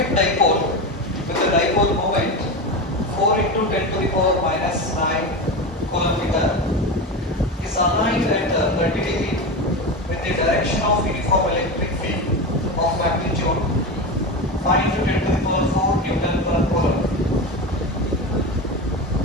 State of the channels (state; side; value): normal; both; correlation 0.22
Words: dipole with a dipole moment 4 into 10 to the power minus 9 coulomb meter is aligned at 30 degree with the direction of uniform electric field of magnitude 5 into 10 to the power 4 Newton per coulomb.